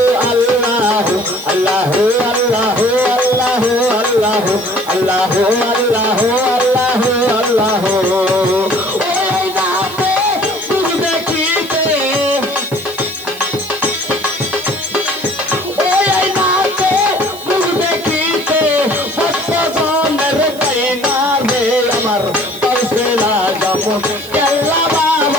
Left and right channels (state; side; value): noise; right; hiss, 17 dB below the sound